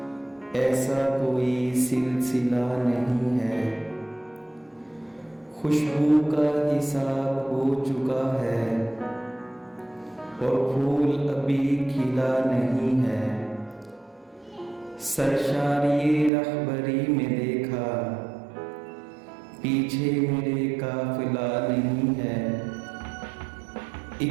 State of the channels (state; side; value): drops out; left; at 16.3 s